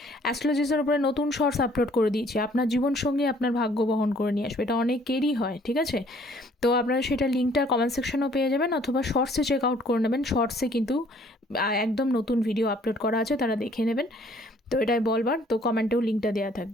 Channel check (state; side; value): normal; both; correlation 0.59